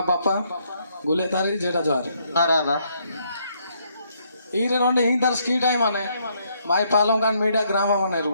बापा गुले तारी जेटा जार अरे ఈరే రెండు ఇంటర్ స్కీ టైం అనే మాయ పాలం కాని మీడియా గ్రామం అనేరు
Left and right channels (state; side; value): inverted; both; correlation -0.72